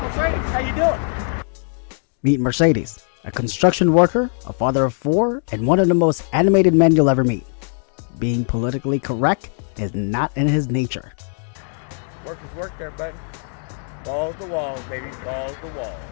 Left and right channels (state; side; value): silent; right; 55 dB below the other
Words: How you doing? Meet Mercedes, a construction worker, a father of four, and one of the most animated men you'll ever meet. Being politically correct is not in his nature. Work is work there, buddy. Balls to walls, baby. Balls to walls.